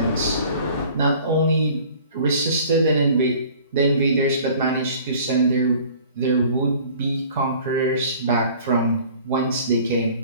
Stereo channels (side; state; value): both; inverted; correlation -0.49